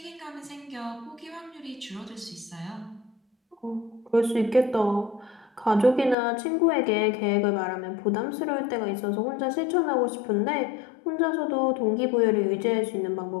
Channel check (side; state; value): right; drops out; at 6.2 s